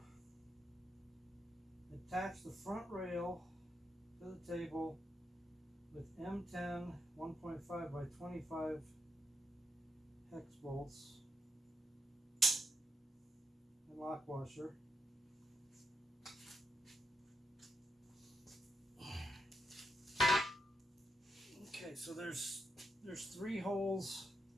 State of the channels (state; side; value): normal; both; correlation 0.82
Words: attach the front rail to the table with M10 1.5 by 25 hex bolts and lock washer. Okay, so there's 3 holes